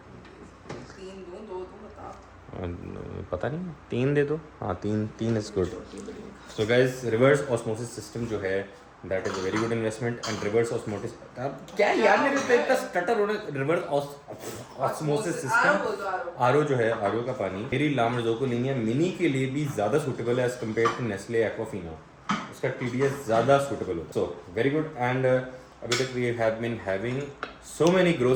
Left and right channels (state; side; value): identical; both; correlation 1.00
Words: पता नहीं 3 दे दो। हाँ 3 is good. So guys reverse osmosis system जो है that is a very good investment. And reverse osmosis क्या यार मेरे पे इतना स्टटर होने, रिवर्स ऑस्मोसिस सिस्टम RO जो है, RO का पानी मेरी लामरज़ोकोलिनिया मिनी के लिए भी ज़्यादा सूटेबल है as compare to Nestle Aquafina. उसका TDS ज़्यादा सूटेबल होता है। So very good. एंड अभी तक we have been having so many